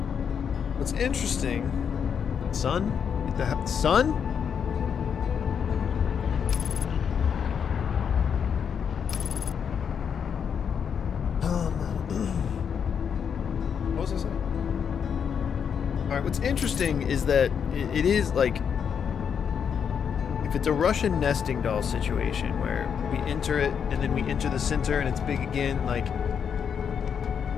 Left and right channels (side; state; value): right; quieter; 7.3 dB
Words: What's interesting? Sun? Get the sun? What was I saying? All right. What's interesting is that it is like, if it's a Russian nesting doll situation where we enter it and then we enter the center and it's big again, like,